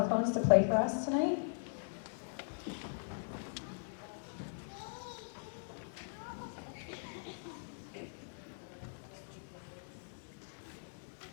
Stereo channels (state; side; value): silent; right; digital silence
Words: to play for us tonight.